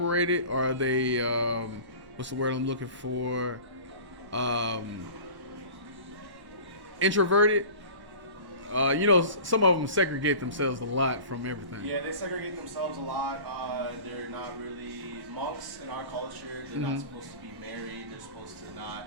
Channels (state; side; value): late; left; 1.1 ms